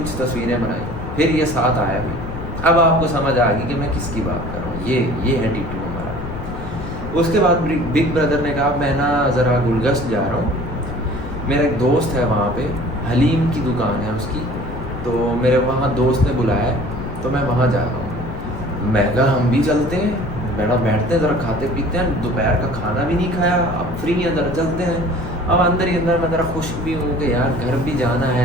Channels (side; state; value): left; noise; rumble, 8 dB below the sound